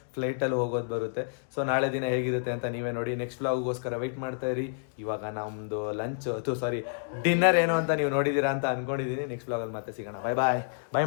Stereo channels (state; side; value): silent; right; digital silence